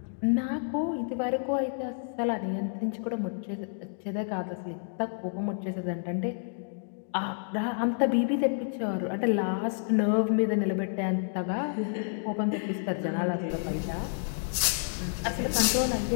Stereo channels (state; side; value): silent; right; digital silence